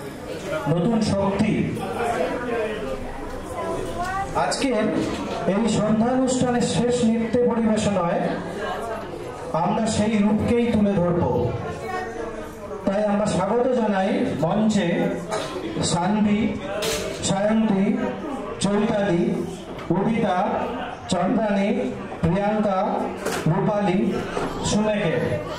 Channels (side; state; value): both; identical; correlation 1.00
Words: নতুন শক্তি। আজকের এই সন্ধ্যানুষ্ঠানের শেষ নৃত্য পরিবেশনায় আমরা সেই রূপকেই তুলে ধরব। তাই আমরা স্বাগত জানাই মঞ্চে সানভি, সায়ন্তী, চৈতালি, উদিতা, চন্দ্রানী, প্রিয়াঙ্কা, রূপালী, সুমেকে।